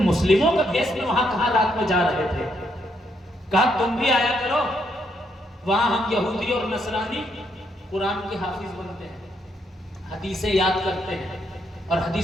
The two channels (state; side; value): normal; both; correlation 0.76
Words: مسلموں کا دیش میں وہاں کہاں رات میں جا رہے تھے؟ کہا تم بھی آیا کرو, وہاں ہم یہودی اور نصرانی قرآن کے حافظ بنتے ہیں, حدیثیں یاد کرتے ہیں, اور